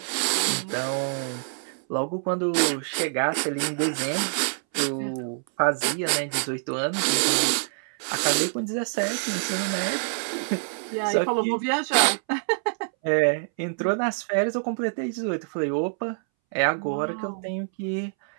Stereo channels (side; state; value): left; silent; 61 dB below the other